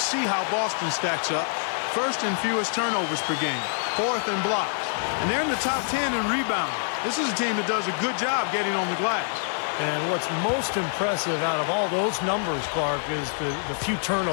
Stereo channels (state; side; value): silent; right; 61 dB below the other